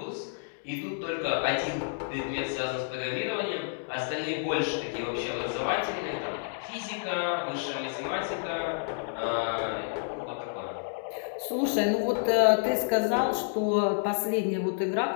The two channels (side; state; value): right; silent; digital silence